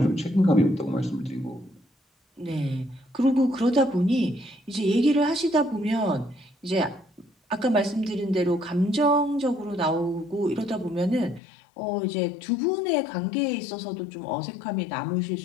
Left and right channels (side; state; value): right; drops out; at 11.4 s